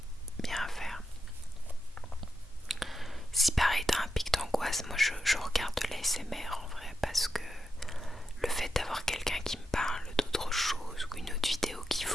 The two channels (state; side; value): normal; both; correlation 0.87